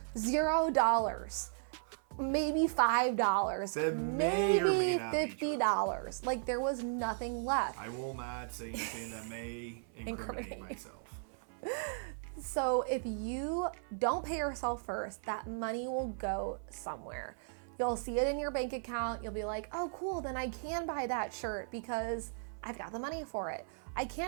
$0. Maybe $5. That may or may not be true. $50. Like there was nothing left. I will not say anything that may incriminate myself. So if you don't pay yourself first, that money will go somewhere. You'll see it in your bank account. You'll be like, oh, cool, then I can buy that shirt because I've got the money for it. I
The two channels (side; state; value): left; silent; 54 dB below the other